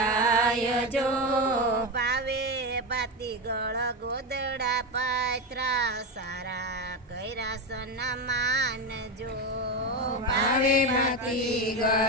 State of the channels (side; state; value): both; normal; correlation 0.15